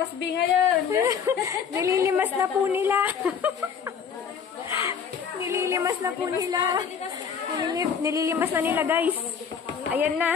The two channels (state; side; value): quieter; right; 6.9 dB